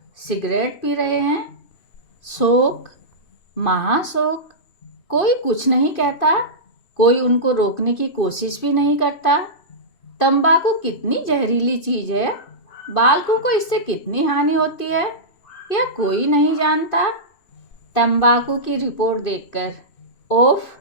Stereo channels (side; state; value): right; late; 2.5 ms